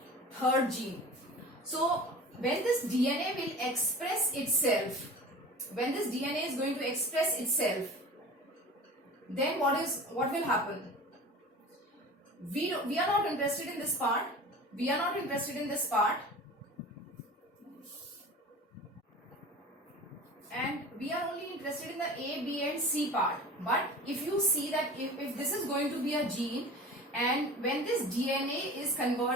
third gene. So when this DNA will express itself, when this DNA is going to express itself, then what will happen? We are not interested in this part. We are not interested in this part, and we are only interested in the A, B and C part. But if you see that if this is going to be a gene, and when this DNA is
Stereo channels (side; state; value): both; normal; correlation 0.37